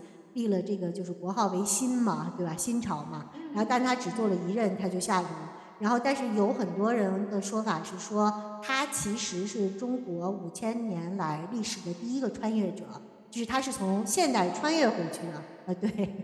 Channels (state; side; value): identical; both; correlation 1.00